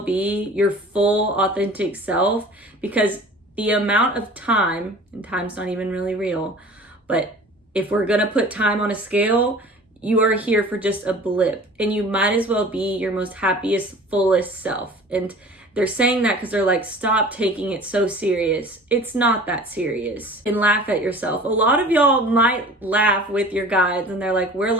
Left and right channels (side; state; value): both; normal; correlation 0.43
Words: be your full authentic self, because the amount of time, and time's not even really real, but if we're gonna put time on a scale, you are here for just a blip, and you might as well be your most happiest, fullest self. And they're saying that because they're like, stop taking it so serious. It's not that serious. And laugh at yourself. A lot of y'all might laugh with your guides, and they're like, we're